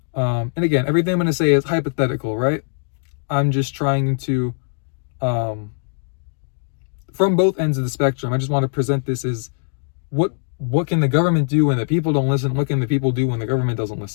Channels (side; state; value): right; silent; digital silence